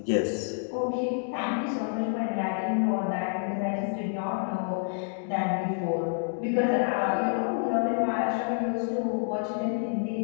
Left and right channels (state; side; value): silent; right; 59 dB below the other